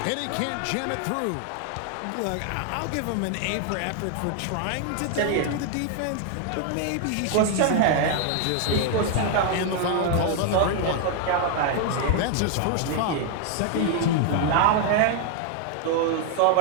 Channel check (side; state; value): both; different; correlation 0.00